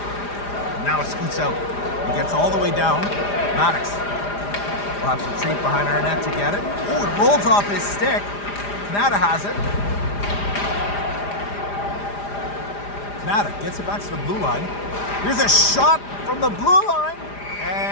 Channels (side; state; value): right; late; 4.9 ms